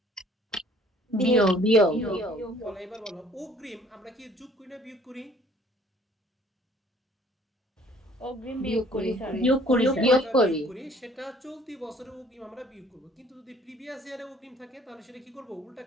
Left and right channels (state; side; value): normal; both; correlation 0.57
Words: বিয়োগ। বিয়োগ। বলো এবার বলো অগ্রিম আমরা কি যোগ করি না বিয়োগ করি? অগ্রিম বিয়োগ করি স্যার। বিয়োগ করি। বিয়োগ করি। সেটা চলতি বছরে অগ্রিম আমরা বিয়োগ করব। কিন্তু যদি প্রিভিয়াস ইয়ারে অগ্রিম থাকে তাহলে সেটা কি করব? উল্টা